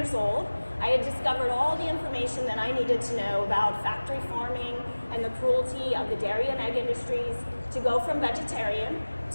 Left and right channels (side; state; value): both; inverted; correlation -1.00